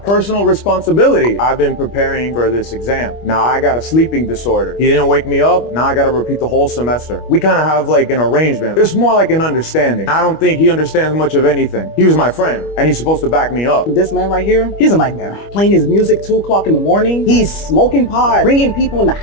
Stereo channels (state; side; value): late; right; 25 ms